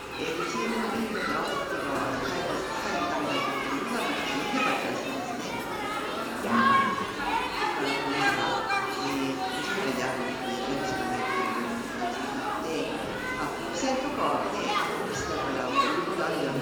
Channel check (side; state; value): both; identical; correlation 1.00